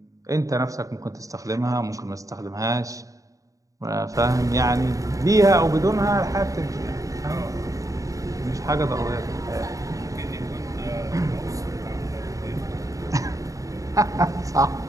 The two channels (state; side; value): late; left; 0.16 ms